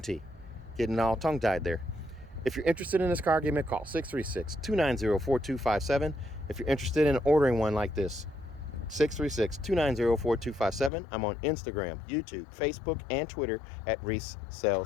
Getting all tongue-tied there. If you're interested in this car, give me a call, 636-290-4257. If you're interested in ordering one like this, 636-290-4257. I'm on Instagram, YouTube, Facebook, and Twitter at Reese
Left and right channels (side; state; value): right; drops out; at 10.9 s